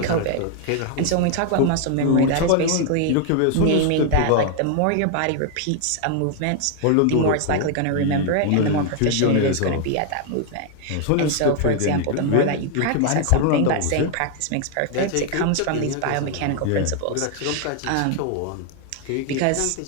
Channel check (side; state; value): both; different; correlation 0.00